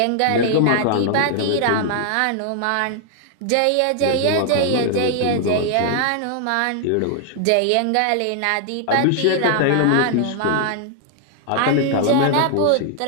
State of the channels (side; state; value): both; different; correlation 0.00